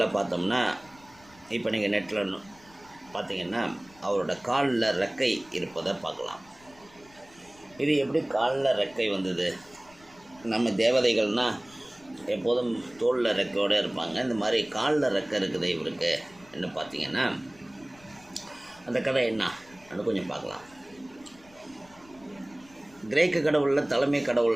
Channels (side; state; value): left; noise; rumble, 26 dB below the sound